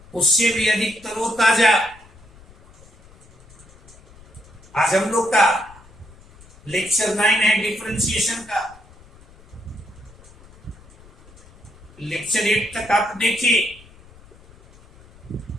उससे भी अधिक तरोताजा। आज हम लोग का लेक्चर 9 है डिफरेंशिएशन का। लेक्चर 8 तक आप देखिए,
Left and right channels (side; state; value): left; noise; rumble, 24 dB below the sound